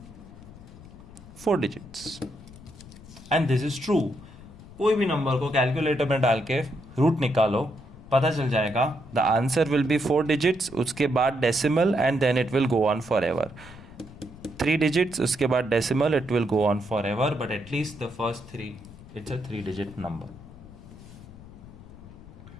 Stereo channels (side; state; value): left; noise; rumble, 18 dB below the sound